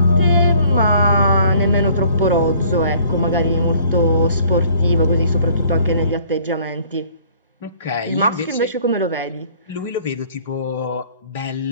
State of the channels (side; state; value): both; inverted; correlation -0.57